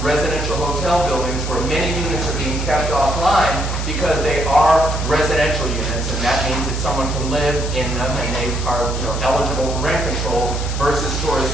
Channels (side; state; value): left; noise; hiss, 11 dB below the sound